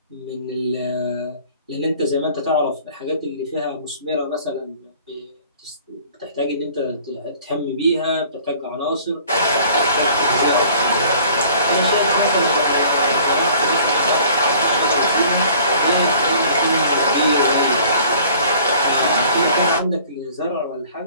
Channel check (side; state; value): both; inverted; correlation -0.51